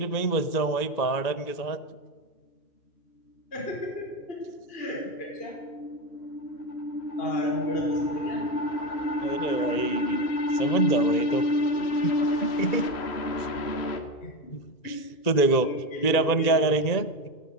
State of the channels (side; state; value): right; late; 1.9 ms